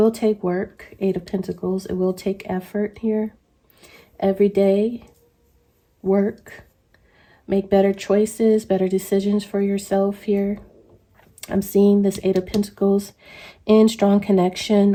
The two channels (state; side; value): identical; both; correlation 1.00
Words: take work, Eight of Pentacles. It will take effort here. Every day, work. Make better choices, better decisions for yourself here. I'm seeing this Eight of Pentacles in strong